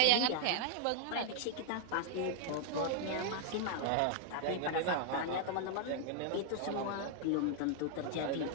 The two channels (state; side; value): different; both; correlation 0.00